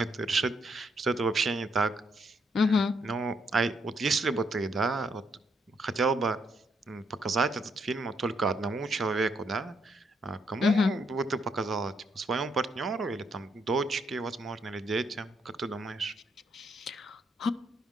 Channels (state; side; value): normal; both; correlation 0.75